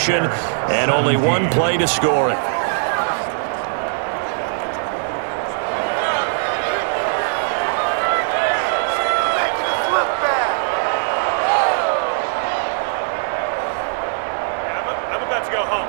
and only one play to score it. I'm about to go home.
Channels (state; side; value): silent; left; digital silence